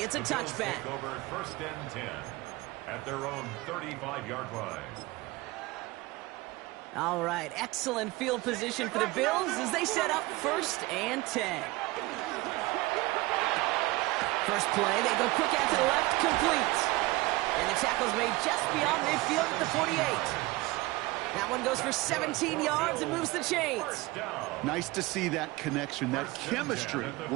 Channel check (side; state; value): left; quieter; 21.0 dB